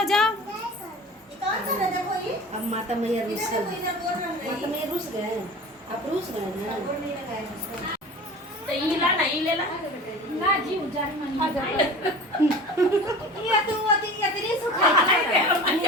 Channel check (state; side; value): normal; both; correlation 0.38